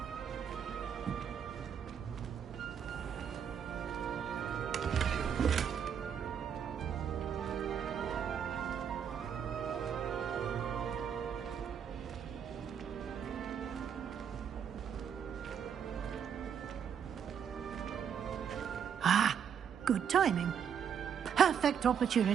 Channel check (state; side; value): quieter; left; 7.9 dB